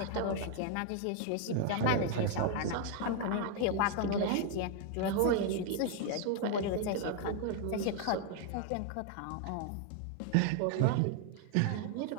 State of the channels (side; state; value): both; different; correlation 0.00